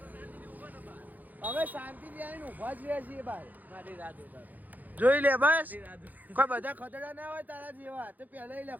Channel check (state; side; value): late; left; 0.082 ms